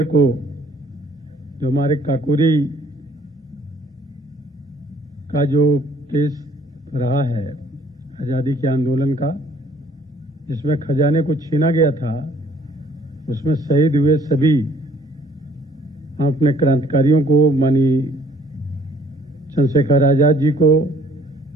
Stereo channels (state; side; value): normal; both; correlation 0.59